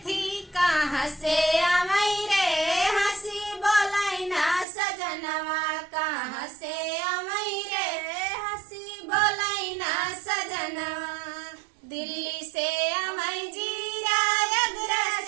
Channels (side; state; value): left; drops out; at 4.7 s